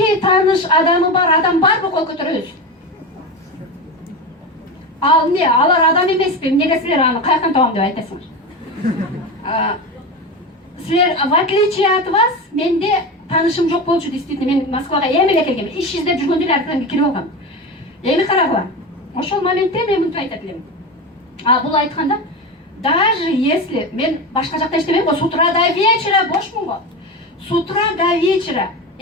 тааныш адамы бар, адам барбы, кол көтөрөбүз. Ал не, алар адам эмеспи? Эмнеге силер аны каяктан табам деп айтасыңар? Силер, в отличие от вас, менде танышым жок болчу, действительно, мен Москвага эми эле келгем. Иш издеп жүргөндө эле аркадан кирип алгам. Эми карагыла. Ошол моментте мен мынтип айтат элем. Бул айтканда, даже если мен башка жакта иштебейм го, с утра до вечера бошмун го. С утра до вечера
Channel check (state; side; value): normal; both; correlation 0.22